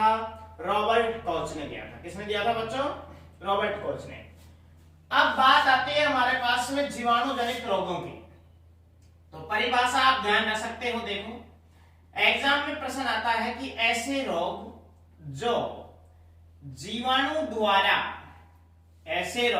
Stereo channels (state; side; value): identical; both; correlation 1.00